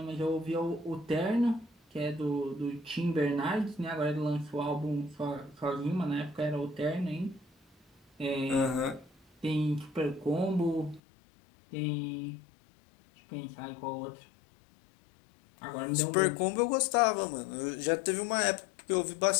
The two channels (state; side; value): drops out; right; at 11.0 s